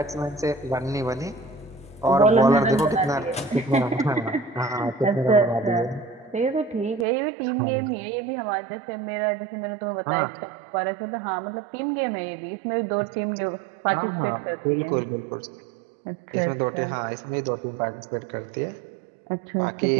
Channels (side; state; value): left; drops out; at 7.1 s